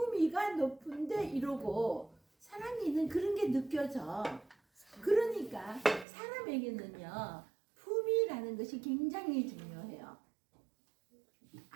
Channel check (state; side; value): drops out; left; at 6.1 s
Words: 높은데 이러고 사랑이는 그런 게 느껴져. 그러니까 사람에게는요, 품위라는 것이 굉장히 중요해요.